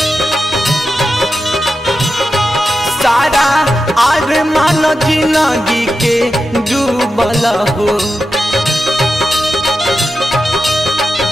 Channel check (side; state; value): both; normal; correlation 0.90